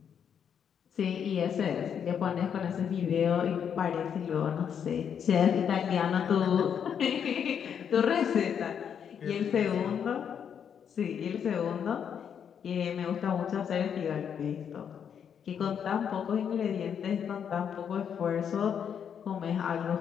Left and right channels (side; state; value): right; quieter; 7.9 dB